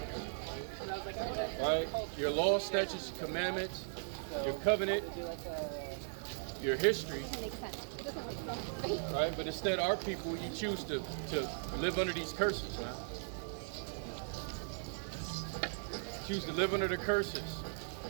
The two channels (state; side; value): silent; left; digital silence